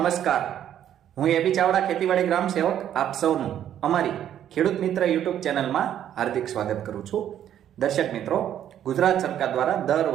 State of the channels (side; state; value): left; quieter; 10.5 dB